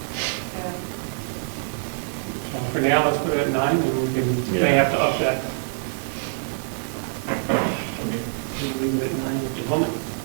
yeah. So for now, let's put it at 9, and we may have to up that. We'll leave it at 9 at the moment.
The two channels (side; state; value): left; silent; digital silence